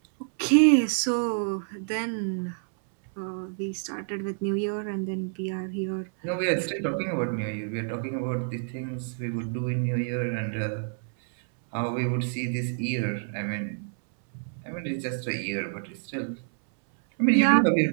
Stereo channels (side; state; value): left; silent; 60 dB below the other